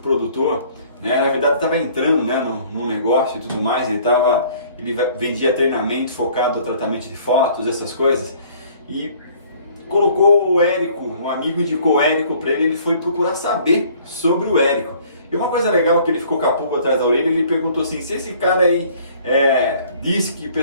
na verdade estava entrando no negócio e tudo mais, ele vendia treinamento focado no tratamento de fotos, essas coisas, e colocou o Érico, um amigo indicou o Érico para ele foi procurar saber sobre o Érico. E uma coisa legal que ele ficou com a pulga atrás da orelha, ele perguntou assim, se esse cara aí disse que o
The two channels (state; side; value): inverted; both; correlation -0.55